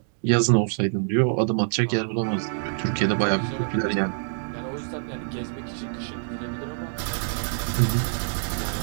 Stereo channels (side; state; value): left; silent; digital silence